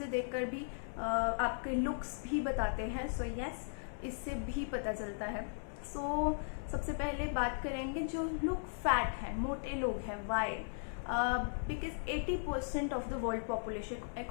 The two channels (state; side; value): silent; right; 53 dB below the other